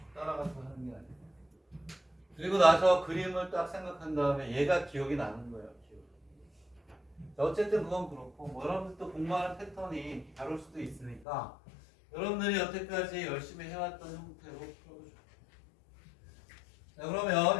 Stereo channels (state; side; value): drops out; right; at 11.2 s